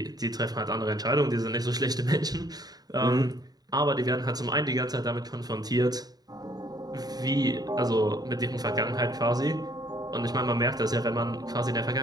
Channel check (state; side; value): late; left; 0.19 ms